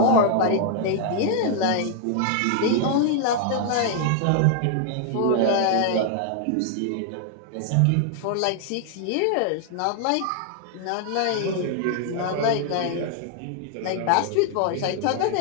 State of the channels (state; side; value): different; both; correlation 0.00